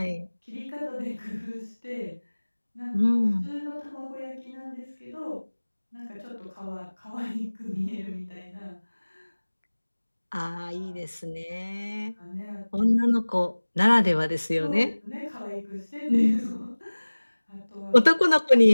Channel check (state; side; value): inverted; both; correlation -1.00